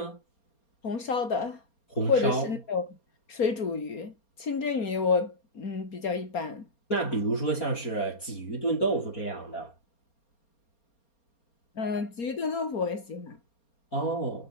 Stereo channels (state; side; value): late; right; 4.3 ms